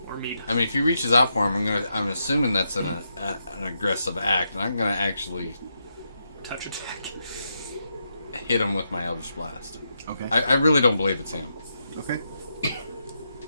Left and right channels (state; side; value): inverted; both; correlation -0.83